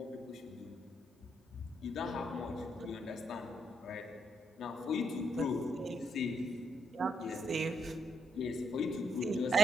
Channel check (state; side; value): normal; both; correlation 0.77